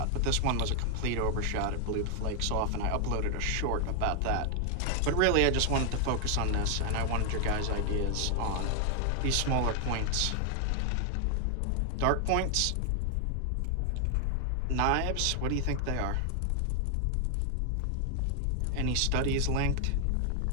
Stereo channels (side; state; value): both; different; correlation 0.00